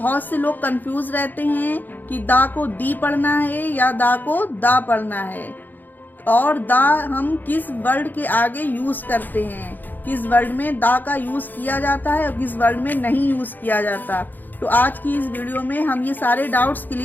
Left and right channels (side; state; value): right; late; 0.087 ms